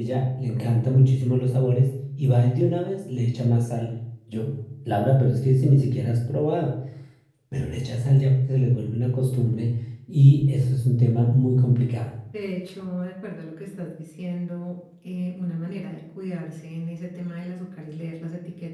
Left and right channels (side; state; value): both; identical; correlation 1.00